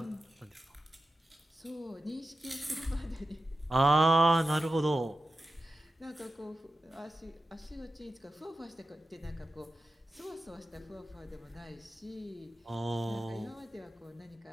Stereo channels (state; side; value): normal; both; correlation 0.93